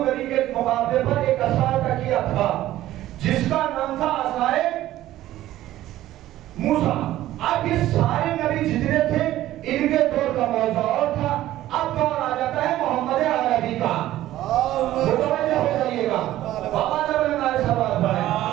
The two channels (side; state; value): left; quieter; 14.3 dB